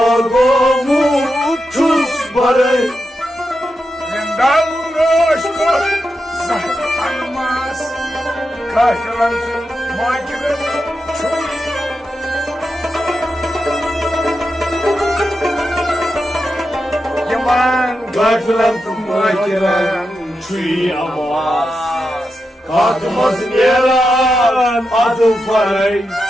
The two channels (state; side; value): normal; both; correlation 0.88